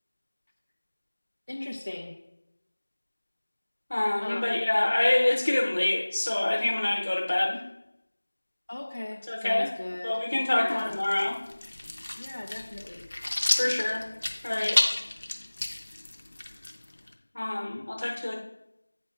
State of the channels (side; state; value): both; inverted; correlation -1.00